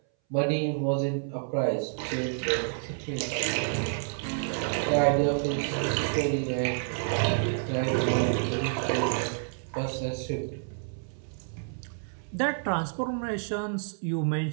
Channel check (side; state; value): left; silent; 59 dB below the other